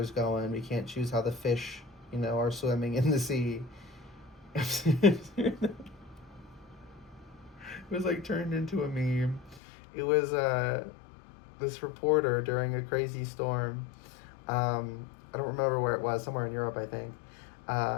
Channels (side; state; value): right; drops out; at 9.6 s